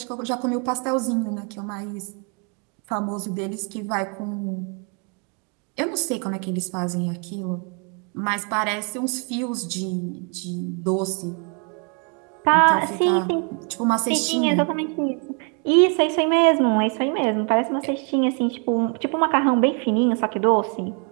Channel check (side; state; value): left; quieter; 38.3 dB